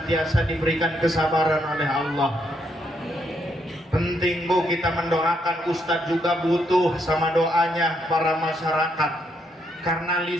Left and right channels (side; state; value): both; normal; correlation 0.76